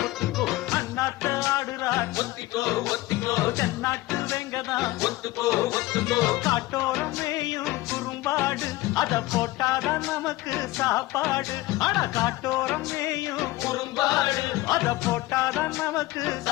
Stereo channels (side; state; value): right; quieter; 18.5 dB